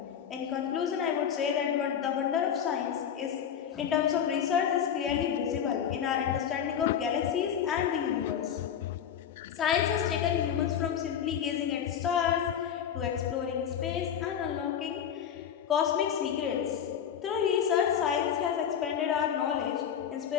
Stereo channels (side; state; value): right; quieter; 8.6 dB